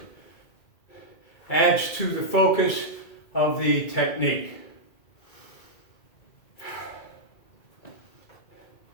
Adds to the focus of the technique.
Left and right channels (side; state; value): right; late; 2.3 ms